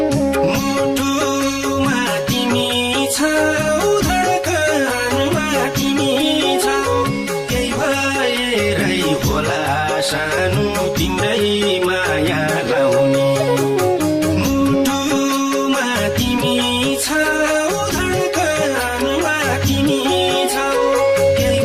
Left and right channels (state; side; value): identical; both; correlation 1.00